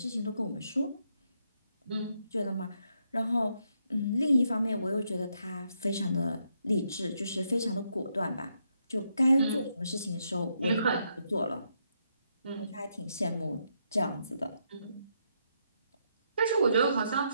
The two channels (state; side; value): inverted; both; correlation -0.78